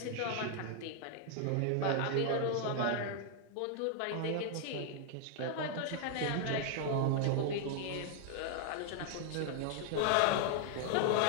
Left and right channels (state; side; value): different; both; correlation 0.00